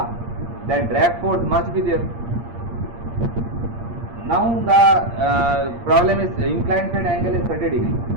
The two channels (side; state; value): left; late; 8.6 ms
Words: That drag force must be there. Now the problem is inclined plane angle is 30 degree,